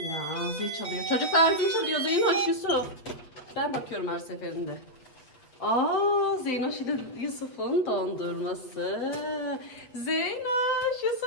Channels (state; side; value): late; right; 7.9 ms